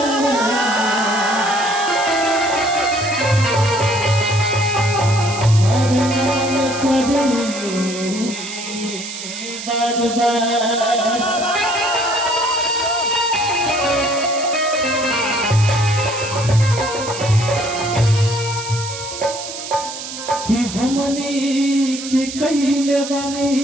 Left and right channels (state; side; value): noise; right; hiss, 9 dB below the sound